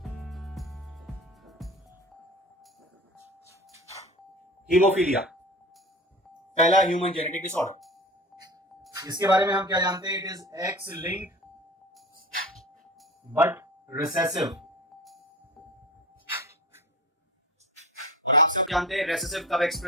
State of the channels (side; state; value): both; normal; correlation 0.34